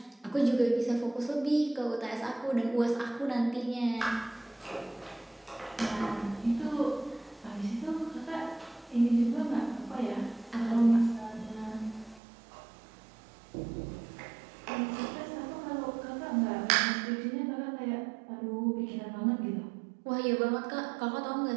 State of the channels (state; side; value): drops out; left; at 12.2 s